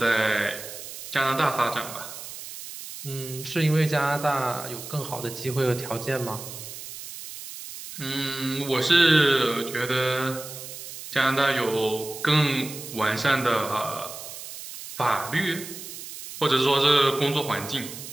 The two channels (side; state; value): right; noise; hiss, 11 dB below the sound